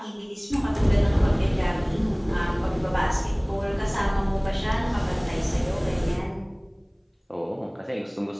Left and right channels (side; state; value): both; identical; correlation 1.00